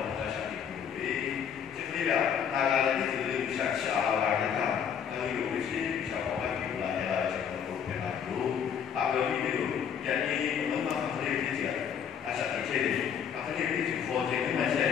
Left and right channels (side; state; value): right; quieter; 7.9 dB